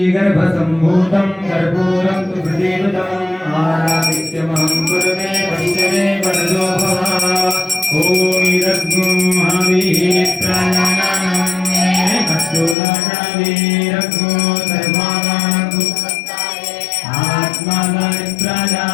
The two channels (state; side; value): drops out; right; at 12.8 s